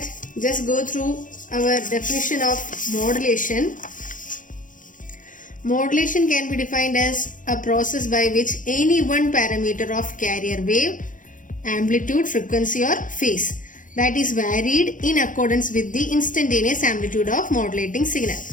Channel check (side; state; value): right; late; 0.38 ms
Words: just go through our definition of modulation. Modulation can be defined as a process by which any one parameter of carrier wave, amplitude, frequency or phase that is varied in accordance with the instantaneous amplitude of modulating signal.